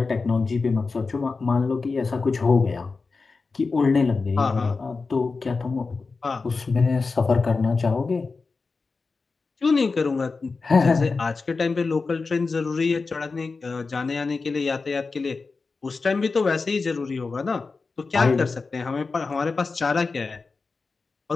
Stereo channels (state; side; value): quieter; right; 4.2 dB